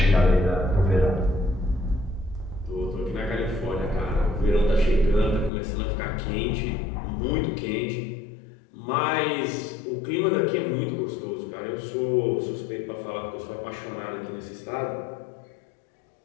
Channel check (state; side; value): drops out; right; at 5.5 s